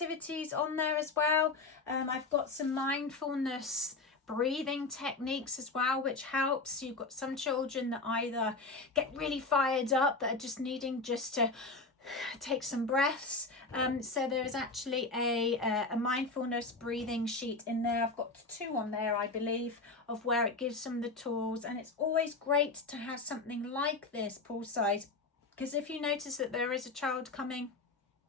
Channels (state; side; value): quieter; right; 3.7 dB